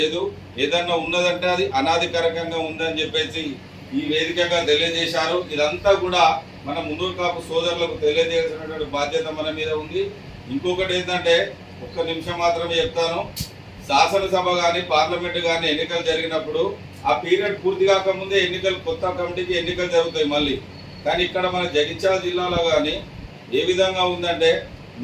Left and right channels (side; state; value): both; identical; correlation 1.00